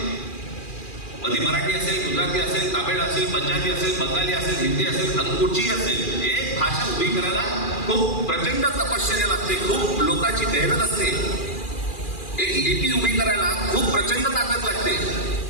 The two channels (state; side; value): late; right; 2.4 ms